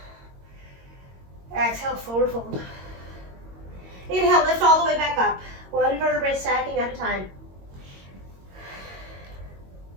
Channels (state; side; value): late; left; 22 ms